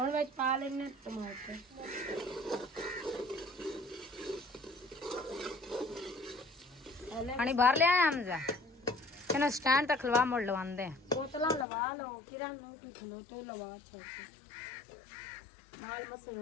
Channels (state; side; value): drops out; right; at 11.7 s